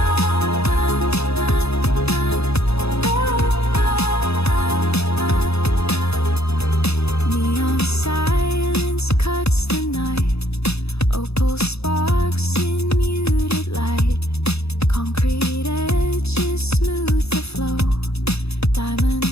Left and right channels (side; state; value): right; late; 0.79 ms